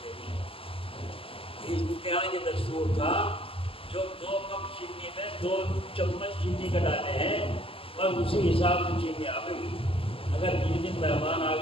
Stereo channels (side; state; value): right; late; 0.26 ms